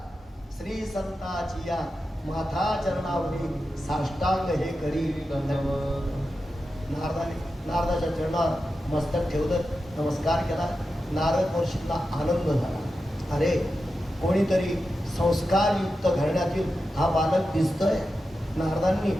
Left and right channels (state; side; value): normal; both; correlation 0.91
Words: श्री संताची या माथा चरणावरी साष्टांग हे करी नारदाच्या चरणावर मस्तक ठेवलं, नमस्कार केला. नारद महर्षींना आनंद झाला. अरे कोणीतरी संस्कारयुक्त घराण्यातील हा बालक दिसतोय. नारदांनी